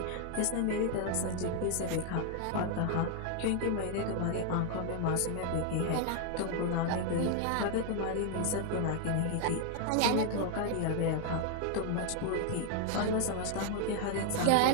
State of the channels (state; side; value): different; both; correlation 0.00